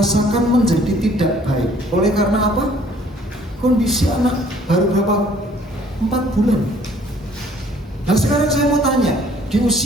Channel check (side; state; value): both; normal; correlation 0.58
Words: menjadi tidak baik. Oleh karena apa? Kondisi anak baru berapa? 4 bulan. Nah sekarang saya mau tanya, di